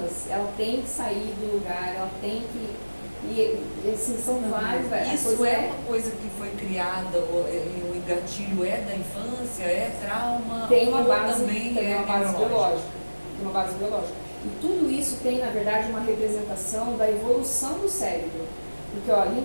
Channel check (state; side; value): inverted; both; correlation -1.00